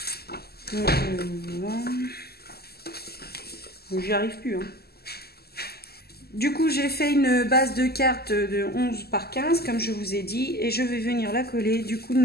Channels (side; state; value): right; late; 0.46 ms